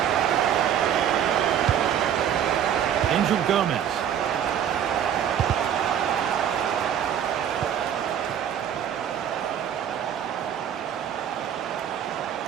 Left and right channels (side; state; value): left; quieter; 9.3 dB